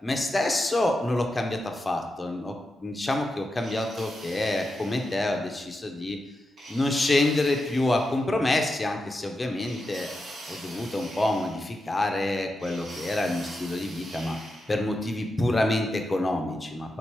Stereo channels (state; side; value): normal; both; correlation 0.88